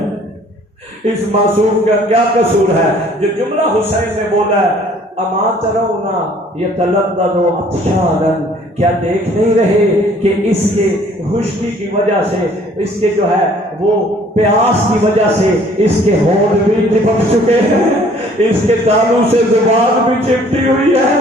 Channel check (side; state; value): both; normal; correlation 0.56